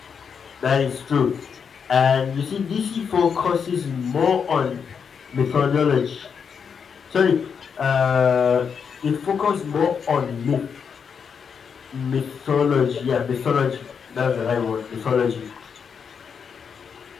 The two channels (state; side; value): quieter; right; 6.6 dB